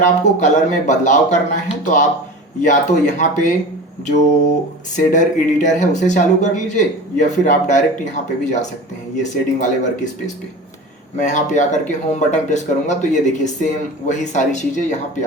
आपको कलर में बदलाव करना है तो आप या तो यहाँ पे जो शेडर एडिटर है उसे चालू कर लीजिए या फिर आप डायरेक्ट यहाँ पे भी जा सकते हैं, ये शेडिंग वाले वर्क स्पेस पे। मैं यहाँ पे आकर के होम बटन प्रेस करूँगा तो ये देखिए सेम वही सारी चीज़ें यहाँ पे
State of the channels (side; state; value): both; normal; correlation 0.34